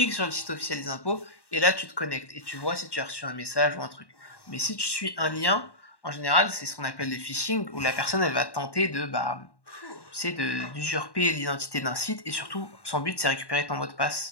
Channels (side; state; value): right; late; 1.1 ms